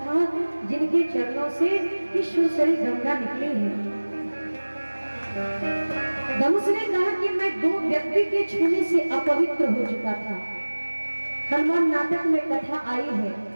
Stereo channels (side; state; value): both; inverted; correlation -1.00